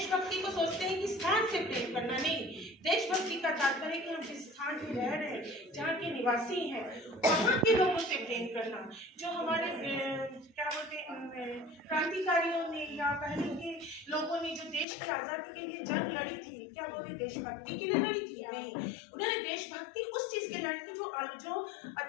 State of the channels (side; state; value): right; drops out; at 14.9 s